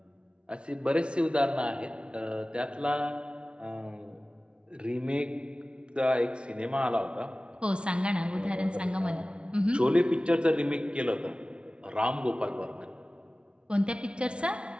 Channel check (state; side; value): late; left; 0.058 ms